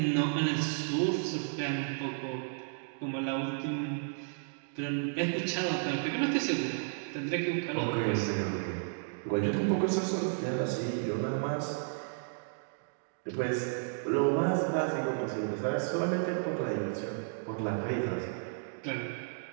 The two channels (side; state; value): left; silent; digital silence